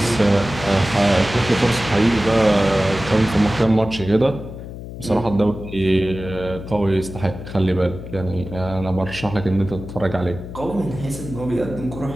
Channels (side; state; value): left; noise; hum, 11 dB below the sound